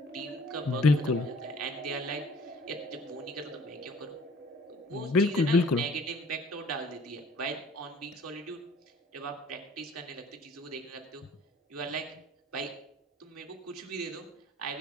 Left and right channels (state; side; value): normal; both; correlation 0.52